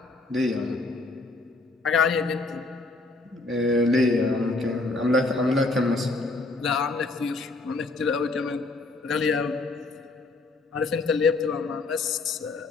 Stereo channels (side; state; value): right; quieter; 3.3 dB